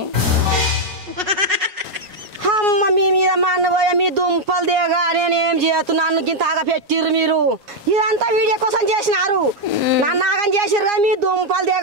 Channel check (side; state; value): left; late; 5.4 ms